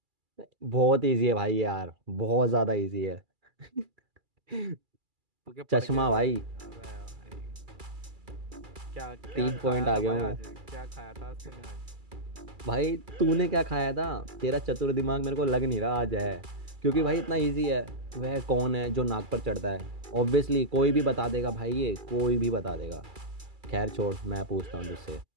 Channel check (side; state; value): left; late; 2.3 ms